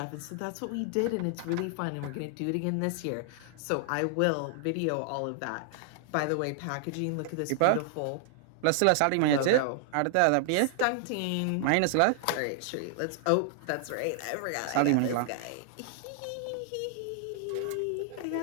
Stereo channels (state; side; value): different; both; correlation 0.00